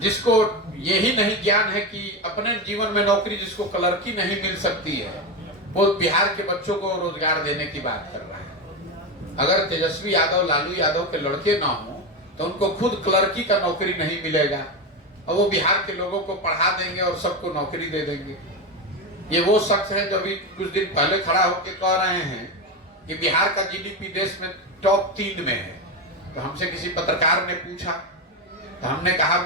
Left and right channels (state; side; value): normal; both; correlation 0.15